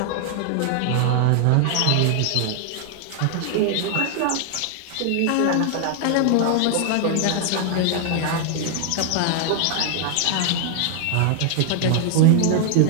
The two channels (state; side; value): different; both; correlation 0.00